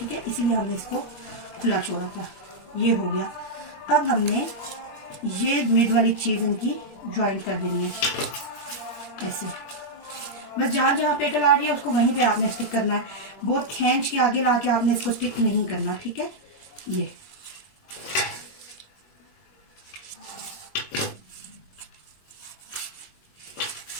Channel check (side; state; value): right; late; 21 ms